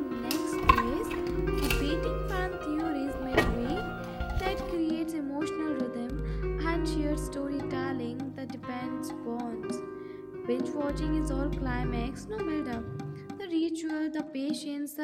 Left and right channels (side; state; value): both; identical; correlation 1.00